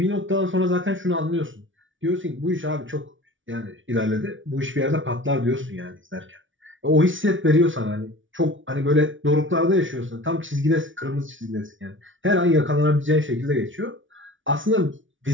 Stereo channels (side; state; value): left; late; 0.56 ms